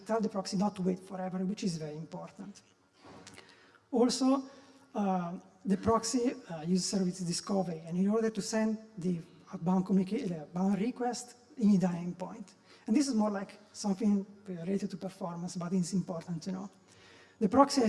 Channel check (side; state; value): both; identical; correlation 1.00